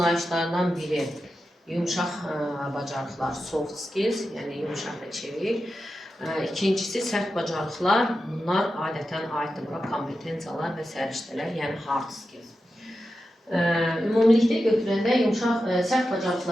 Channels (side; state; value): both; normal; correlation 0.90